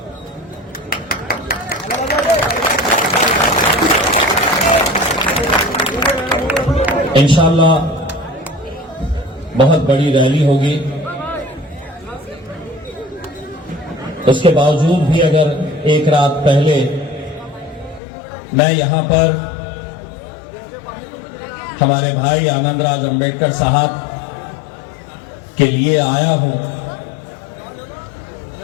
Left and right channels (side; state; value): right; drops out; at 18.0 s